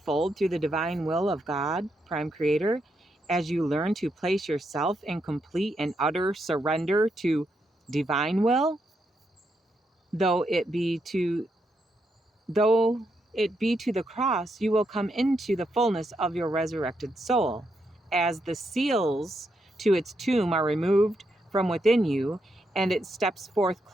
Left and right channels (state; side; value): normal; both; correlation 0.81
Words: through the divine will of God, Prime Creator, as you learn to place yourself in complete and utter surrender to divine will, though it be to the cross, you will come into the fullness of your resurrected soul, as the seals to its tomb are removed from within you, and it steps forth